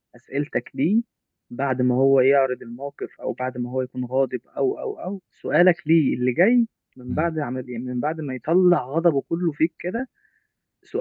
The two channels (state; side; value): identical; both; correlation 1.00